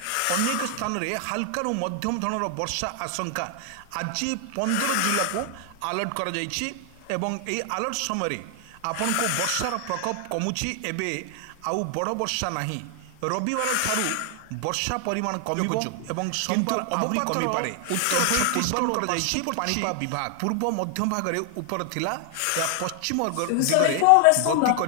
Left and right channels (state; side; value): different; both; correlation 0.00